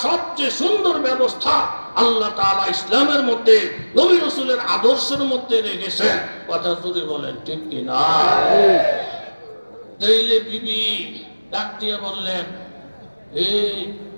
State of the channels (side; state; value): both; inverted; correlation -1.00